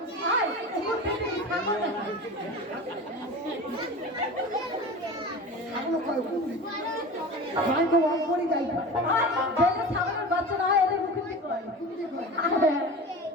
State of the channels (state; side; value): normal; both; correlation 0.33